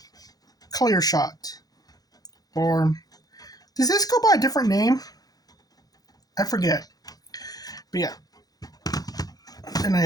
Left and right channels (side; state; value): right; late; 0.18 ms